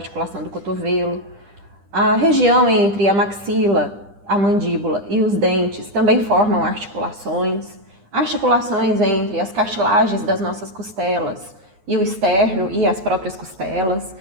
do cotovelo, a região entre a maxila, a mandíbula e os dentes também formam articulações, articulações entre as cartilagens das nossas costelas e o externo e as próprias costelas.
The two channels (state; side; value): late; left; 10 ms